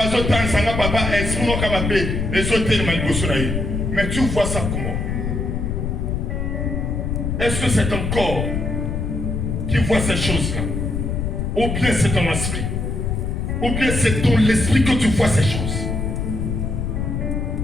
dit que papa est mon capable les autres. Mais tu vois ça comment? Est-ce que c'est ton corps qui voit ces choses-là? Ou bien c'est ton esprit? Ou bien c'est ton l'esprit que tu vois ces choses?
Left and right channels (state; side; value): noise; left; rumble, 1 dB below the sound